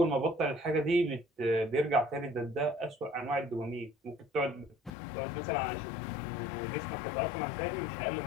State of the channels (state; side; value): drops out; right; at 4.9 s